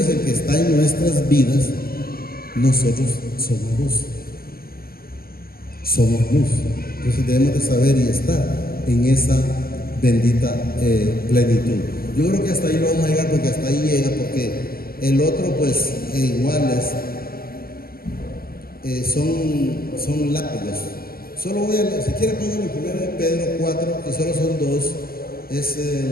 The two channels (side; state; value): right; late; 0.43 ms